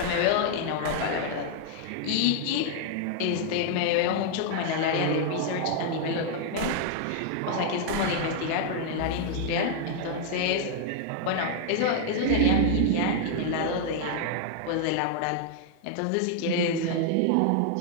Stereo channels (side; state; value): both; different; correlation 0.00